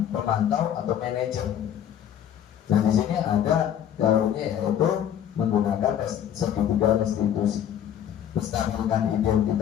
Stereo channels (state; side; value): quieter; right; 9.9 dB